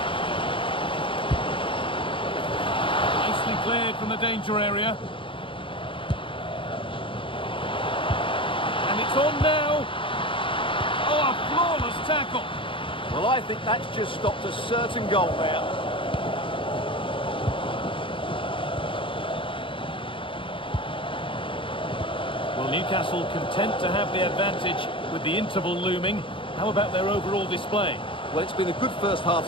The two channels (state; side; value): late; right; 0.25 ms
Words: Nicely cleared from the danger area. And it's on now. Oh, a flawless tackle. Well, I think that's just stopped a certain goal there. Well, Newcastle content to have the advantage with the interval looming. How about their overall display? Well, it's been a good first half